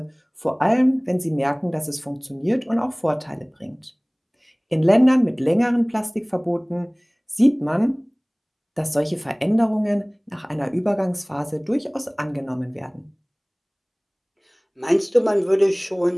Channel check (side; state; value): both; identical; correlation 1.00